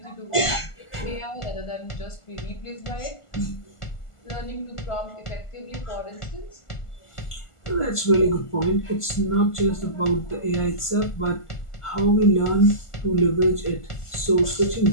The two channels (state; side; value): late; right; 1.4 ms